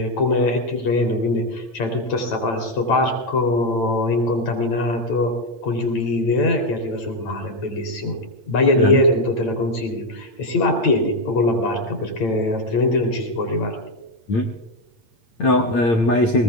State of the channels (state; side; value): late; right; 8.9 ms